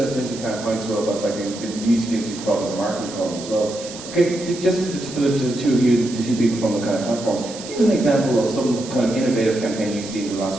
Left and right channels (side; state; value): right; noise; hiss, 13 dB below the sound